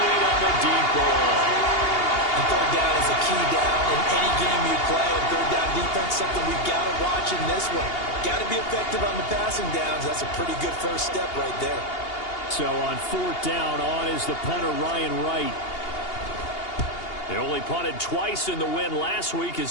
on the deep ball. And third down is a key down in any game you play. And third down defense, something we've got to watch in this one. Got to be effective on the passing downs. That's a pretty good first step right there. So on fourth down, on is the punter, Ryan Wright. They only punted twice in the win last week as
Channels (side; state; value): right; late; 2.8 ms